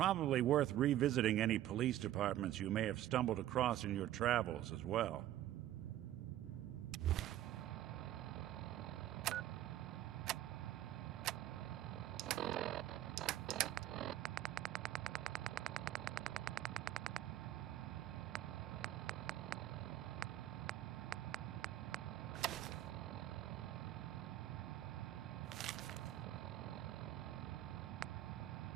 worth revisiting any police departments you may have stumbled across in your travels as well.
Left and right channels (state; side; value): quieter; left; 12.9 dB